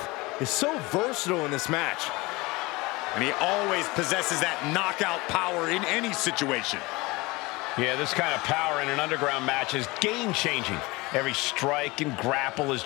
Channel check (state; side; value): quieter; right; 23.0 dB